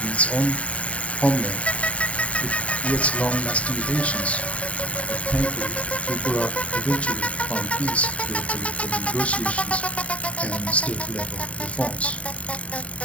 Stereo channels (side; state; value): right; late; 0.065 ms